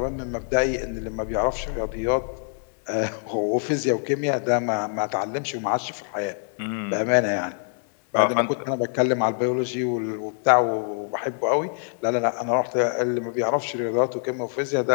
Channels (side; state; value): right; silent; digital silence